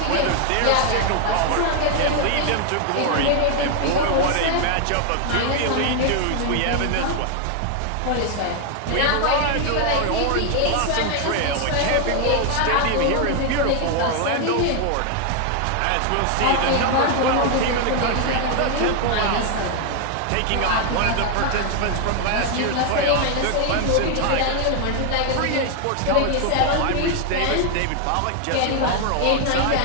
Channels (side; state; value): both; different; correlation 0.00